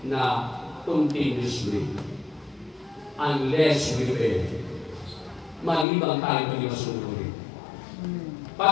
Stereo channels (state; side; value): drops out; right; at 5.9 s